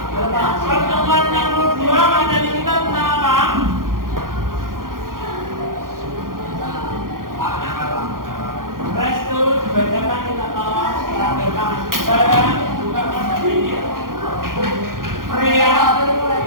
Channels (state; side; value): late; left; 0.91 ms